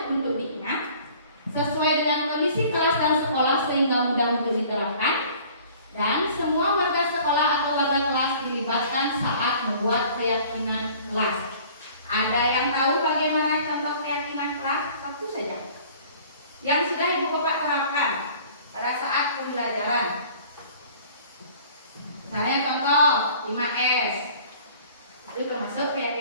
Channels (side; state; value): both; inverted; correlation -0.50